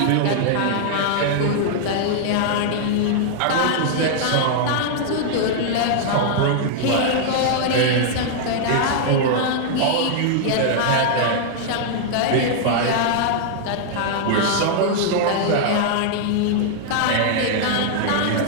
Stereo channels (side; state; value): both; different; correlation -0.01